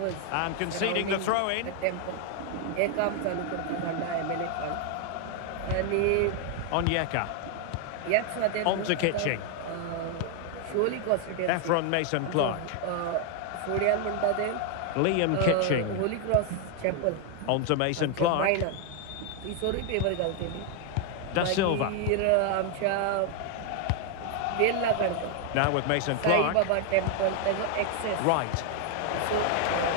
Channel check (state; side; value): different; both; correlation 0.00